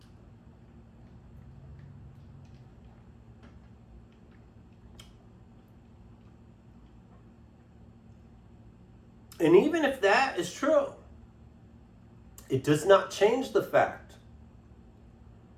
And even if that is true, it does not change the fact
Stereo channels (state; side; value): identical; both; correlation 1.00